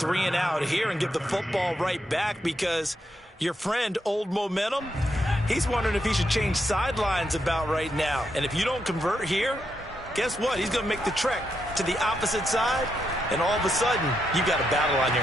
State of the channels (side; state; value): both; normal; correlation 0.82